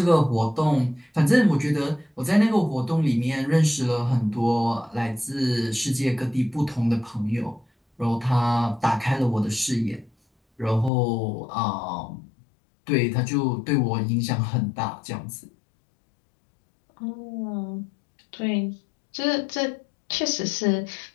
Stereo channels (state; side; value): drops out; right; at 10.9 s